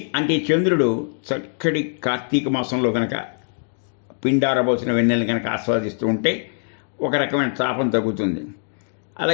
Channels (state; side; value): silent; right; digital silence